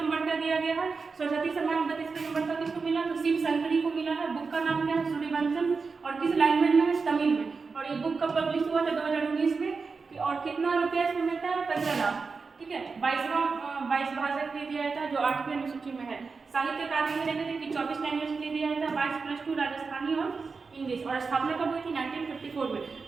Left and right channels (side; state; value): left; quieter; 4.7 dB